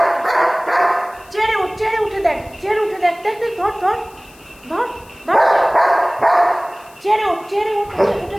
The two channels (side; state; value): left; noise; hiss, 26 dB below the sound